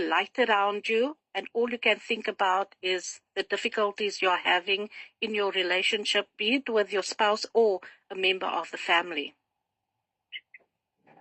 around you, and all you can think about is the difficulties you're having in your relationship, be it with your spouse or a member of the family.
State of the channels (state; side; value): identical; both; correlation 1.00